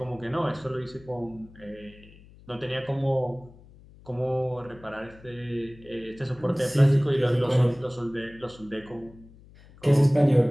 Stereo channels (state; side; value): noise; left; hum, 23 dB below the sound